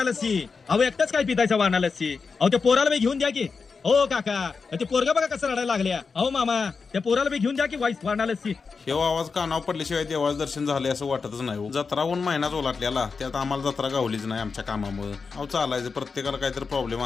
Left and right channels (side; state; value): right; quieter; 4.9 dB